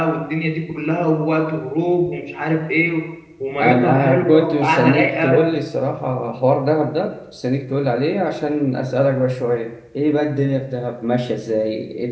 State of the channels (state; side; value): identical; both; correlation 1.00